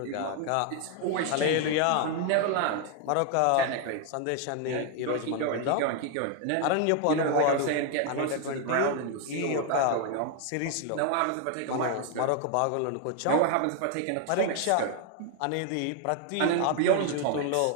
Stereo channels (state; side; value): different; both; correlation 0.00